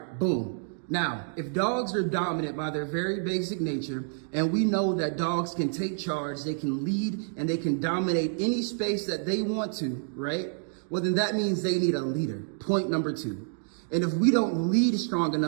boom. Now, if dogs are dominant by their very basic nature, and we know that dogs can take charge, they can lead, and they can dominate any space that they want to, right? Well, then that means they need a leader. Point number two. And if we don't lead strong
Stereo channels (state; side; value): silent; left; digital silence